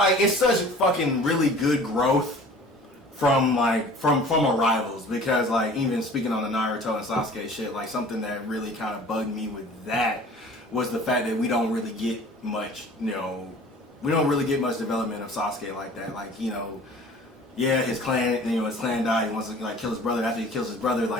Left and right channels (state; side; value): normal; both; correlation 0.46